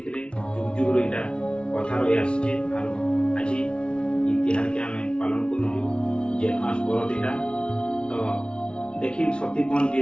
थे जुग जुग रहा कथा रही आसचे और आज इतिहास के आम पालन करूँ जेठ मास बरदीटा तो देखी सतीपन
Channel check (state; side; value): late; right; 0.057 ms